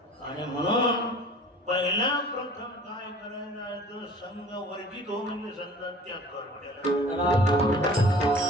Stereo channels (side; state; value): both; normal; correlation 0.46